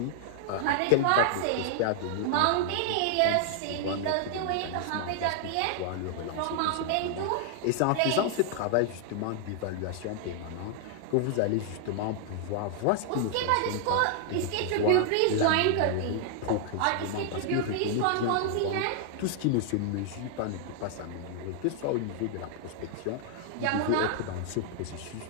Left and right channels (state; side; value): different; both; correlation 0.00